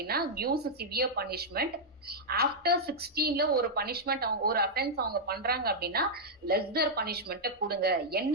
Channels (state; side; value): normal; both; correlation -0.05